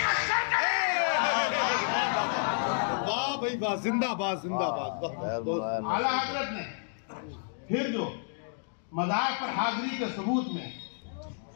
शर करे। वाह भाई वाह, जिंदाबाद जिंदाबाद। आला हजरत ने फिर जो मज़ार पर हाजिरी के सबूत में,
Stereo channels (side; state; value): right; silent; digital silence